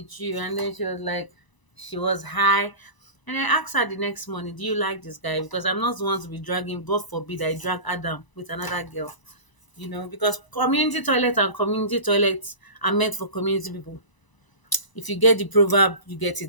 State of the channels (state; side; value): late; right; 1.0 ms